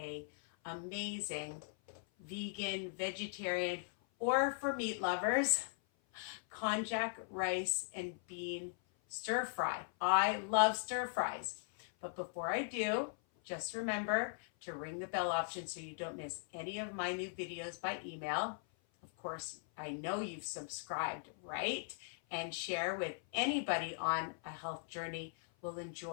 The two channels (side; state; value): right; silent; 51 dB below the other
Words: amazing vegan, vegetarian, or for meat lovers, konjac rice and bean stir fry. I love stir fries. But before I do, just remember to ring the bell option so you don't miss any of my new videos by email. Of course, I know you've subscribed, right? And share with anybody on a health journey will